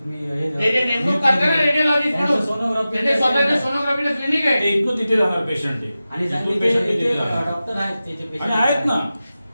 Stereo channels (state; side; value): inverted; both; correlation -0.94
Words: ते जे नेमणूक करतात ना रेडिओलॉजिस्ट म्हणून, सोनोग्राफी ते स्वतःचे सोनोग्राफीचं क्लिनिक आहे. ते इथून तिथे जाणार पेशंट आहे. आणि इथून patient तिथे जाणार. डॉक्टर आहेत त्याचे आणि patient आहेत ना,